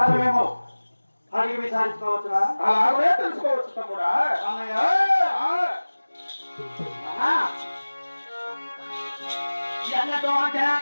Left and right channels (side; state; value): both; inverted; correlation -1.00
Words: అడిగి విచారించుకోవచ్చురా? అలాగే తెలుసుకోవచ్చు తమ్ముడా. అన్నయ్య ఎన్నడో